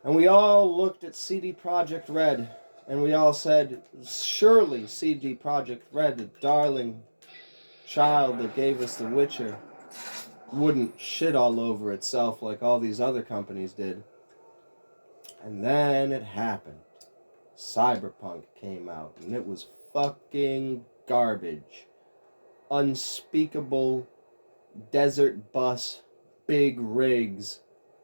And we all looked at CD Projekt Red, and we all said, surely CD Projekt Red, the darling child that gave us The Witcher, wouldn't shit all over itself like all these other companies did. And then it happened. Cyberpunk came out, and it was fucking garbage. Unspeakable desert bus, big rigs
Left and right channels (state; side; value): inverted; both; correlation -1.00